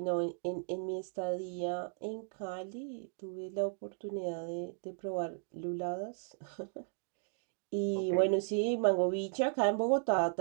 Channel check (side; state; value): left; silent; digital silence